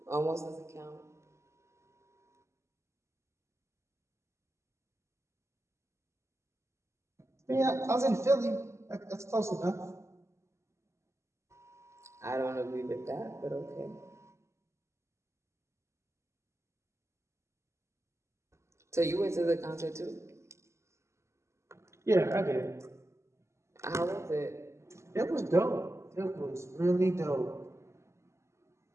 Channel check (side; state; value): left; late; 0.13 ms